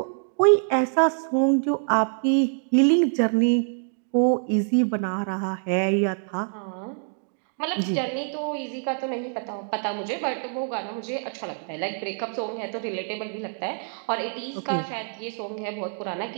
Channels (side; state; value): left; silent; 60 dB below the other